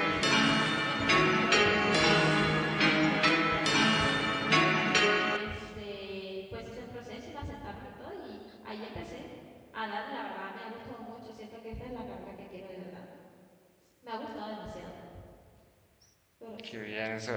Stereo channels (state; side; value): identical; both; correlation 1.00